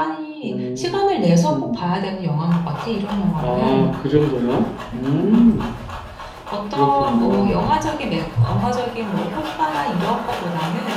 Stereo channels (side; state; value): both; identical; correlation 1.00